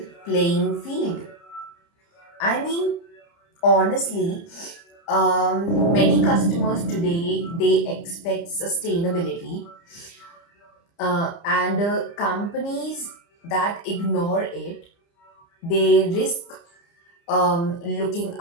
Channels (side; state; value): right; late; 30 ms